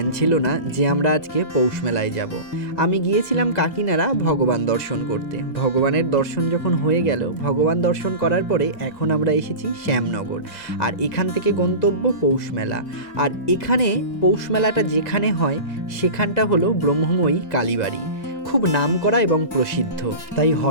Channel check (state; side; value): late; right; 2.0 ms